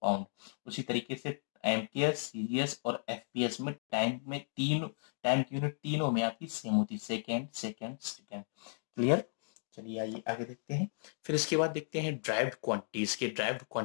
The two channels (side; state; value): right; silent; digital silence